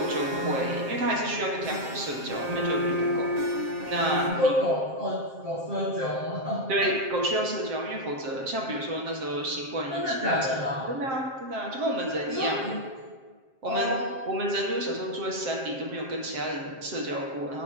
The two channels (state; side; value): late; left; 7.5 ms